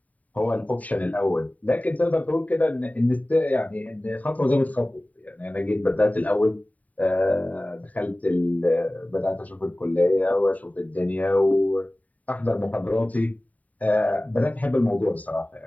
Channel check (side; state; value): right; late; 0.071 ms